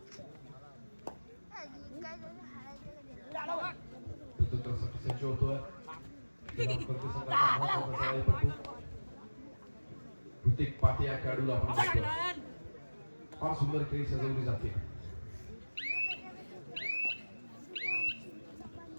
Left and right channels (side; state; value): both; inverted; correlation -1.00